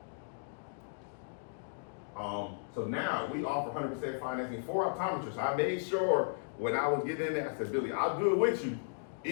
So now we offer 100% financing for optometrists. I made sure when I was getting in there, I said, Billy, I'll do it with you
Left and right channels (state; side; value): silent; right; digital silence